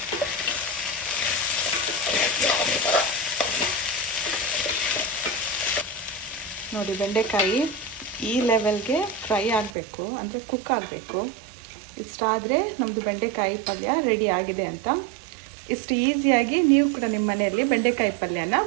ನೋಡಿ, ಬೆಂಡೆಕಾಯಿ ಈ ಲೆವೆಲ್ಗೆ ಫ್ರೈ ಆಗಬೇಕು, ಅಂದರೆ ಕುಕ್ ಆಗಬೇಕು. ಇಷ್ಟಾದರೆ ನಮ್ಮದು ಬೆಂಡೆಕಾಯಿ ಪಲ್ಯ ರೆಡಿ ಆಗಿದೆ ಅಂತ. ಇಷ್ಟು ಈಸಿಯಾಗಿ ನೀವು ಕೂಡ ನಿಮ್ಮ ಮನೆಯಲ್ಲಿ ಬೆಂಡೆಕಾಯಿ ಪಲ್ಯನ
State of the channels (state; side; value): drops out; left; at 9.7 s